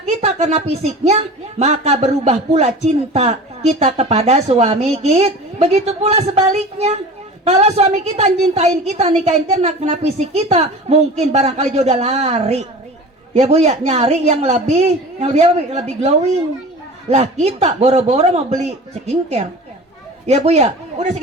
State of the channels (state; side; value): normal; both; correlation 0.37